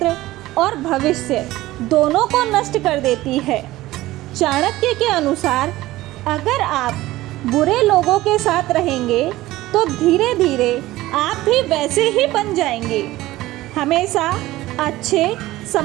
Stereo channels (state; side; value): quieter; left; 17.0 dB